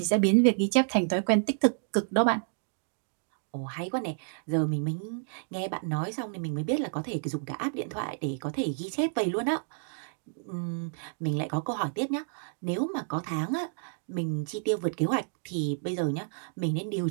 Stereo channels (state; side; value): silent; left; digital silence